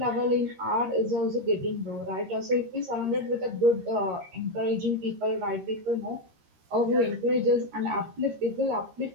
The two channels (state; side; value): late; left; 13 ms